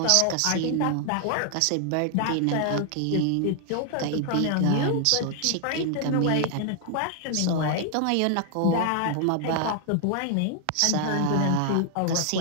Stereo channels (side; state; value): both; different; correlation 0.00